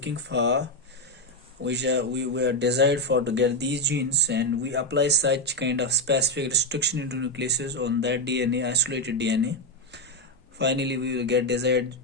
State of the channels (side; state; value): both; normal; correlation 0.04